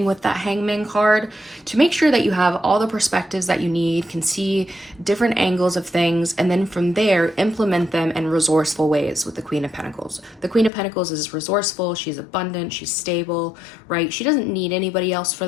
with that Hangman card to make sure that you have all the perspectives that you need, can see different angles of things, and then from there, implement them in resourceful ways with the Queen of Pentacles. The Queen of Pentacles is resourceful, she's abundant, she's stable, right? She doesn't need anybody else for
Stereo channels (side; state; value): right; drops out; at 10.7 s